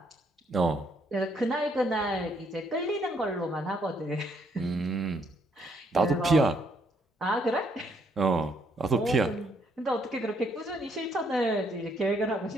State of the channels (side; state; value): both; normal; correlation 0.70